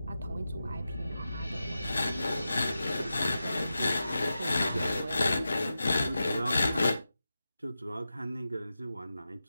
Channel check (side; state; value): both; inverted; correlation -0.91